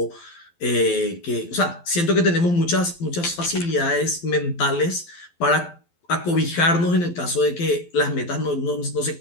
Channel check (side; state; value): right; late; 12 ms